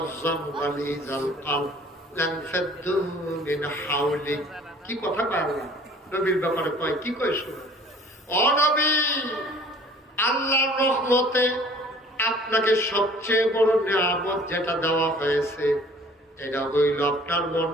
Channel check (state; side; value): normal; both; correlation 0.51